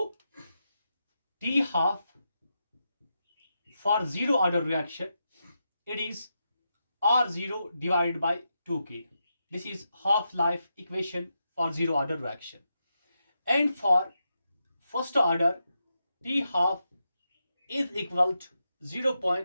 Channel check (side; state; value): both; inverted; correlation -0.86